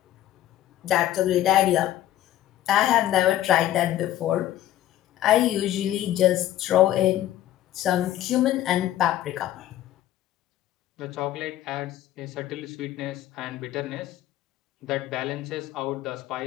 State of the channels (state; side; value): quieter; right; 13.1 dB